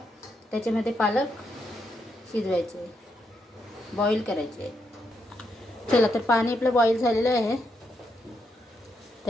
त्याच्यामध्ये पालक शिजवायचे, बॉईल करायचे। चला तर पाणी आपलं बॉईल झालेलं आहे।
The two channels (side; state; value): both; normal; correlation 0.80